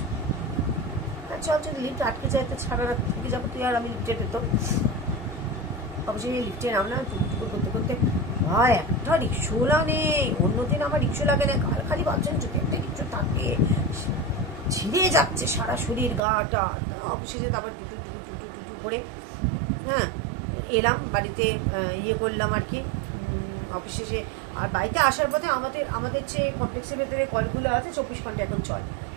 চল যদি লিফট আটকে যায় তো সারা রাত থেকে যাবো তুই আর আমি লিফটে পেতো। অবশ্যই লিফটে নামলাম, টুকটুকু করতে করতে। ভাই একটা রিক্সোলা নেই, অন্যদিন আমার রিক্সো লাগে না, কাল খালি ভাবছেন যদি একটা রিক্সো থাকে, ছিঁড়ে যাচ্ছে সারা শরীর গাটা। অবশেষে তারপর টুটু টুটু টুটু টুটু করে হ্যাঁ এলাম বাড়িতে, ইয়ে করলাম আর কি অবশেষে। আর বাড়িতে আসার পথে আমাদের যে কমপ্লেক্সের ভেতরে কলগুলো আছে 24 ঘন্টা এখন চল।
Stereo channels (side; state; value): left; drops out; at 16.2 s